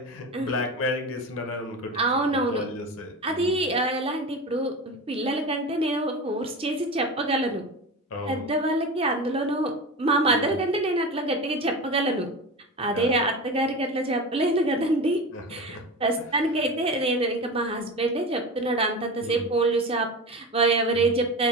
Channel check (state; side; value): normal; both; correlation 0.27